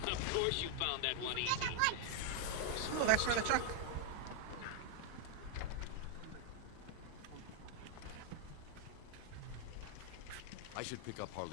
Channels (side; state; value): both; different; correlation 0.00